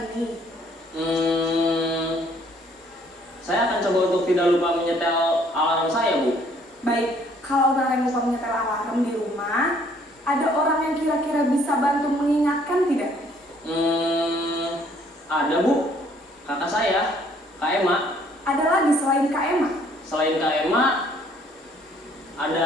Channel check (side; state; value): both; normal; correlation 0.62